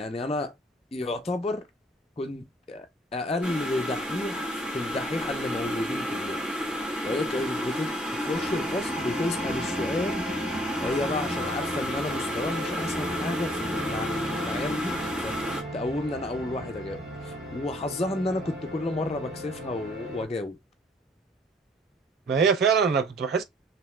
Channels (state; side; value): normal; both; correlation 0.61